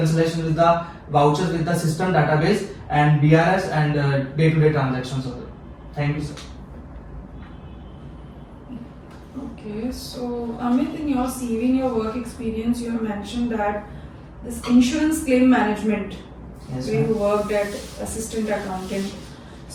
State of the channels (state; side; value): identical; both; correlation 1.00